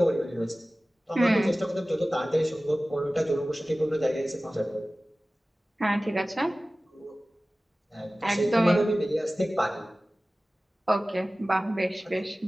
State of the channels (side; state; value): both; normal; correlation 0.97